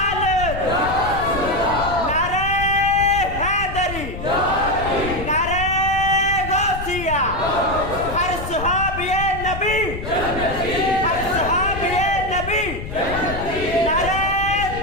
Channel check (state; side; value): noise; left; rumble, 8 dB below the sound